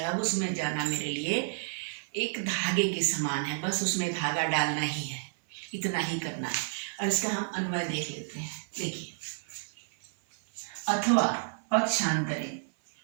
अब उसमें जाना मेरे लिए एक धागे के समान है, बस उसमें धागा डालना ही है, इतना ही करना है। और इसका हम अन्वय देख लेते हैं। देखिए, अथवा पक्षांतरे,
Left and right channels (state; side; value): silent; left; 56 dB below the other